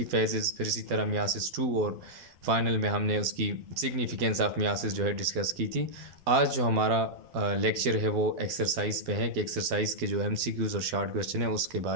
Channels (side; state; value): left; late; 12 ms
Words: फेजेस, फिर इसी तरह मियासिस 2 और फाइनल में हमने उसकी सिग्निफिकेंस ऑफ मियासिस जो है डिस्कस की थी। आज जो हमारा लेक्चर है वो एक्सरसाइज पे है कि एक्सरसाइज के जो MCQs और शॉर्ट क्वेश्चन है उसके